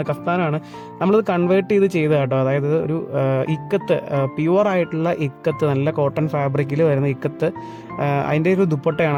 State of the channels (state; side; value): identical; both; correlation 1.00